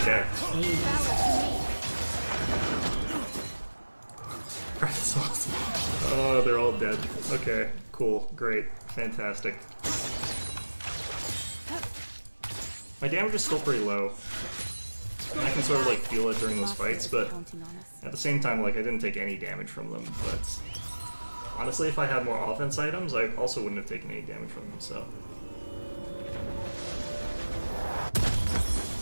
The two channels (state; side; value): inverted; both; correlation -1.00